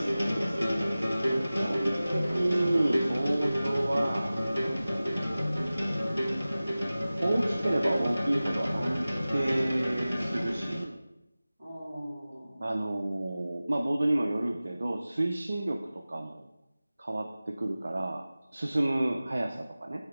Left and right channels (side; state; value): both; inverted; correlation -0.97